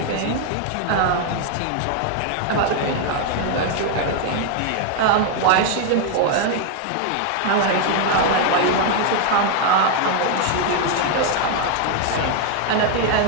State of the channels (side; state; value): both; different; correlation 0.00